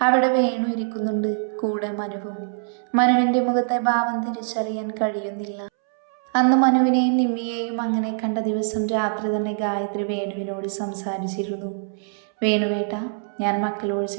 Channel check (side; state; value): left; silent; 63 dB below the other